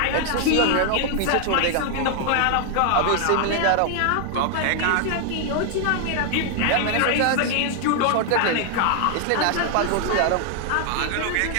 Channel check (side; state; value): both; different; correlation 0.00